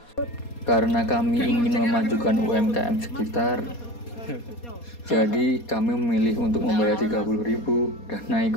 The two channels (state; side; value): late; right; 4.2 ms